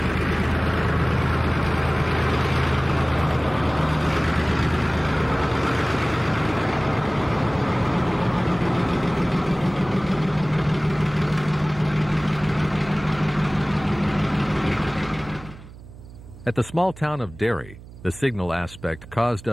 At the small town of Derry, the signal aspect caused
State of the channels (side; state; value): right; noise; hum, 18 dB below the sound